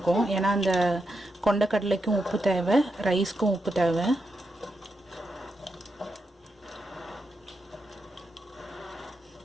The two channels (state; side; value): normal; both; correlation 0.85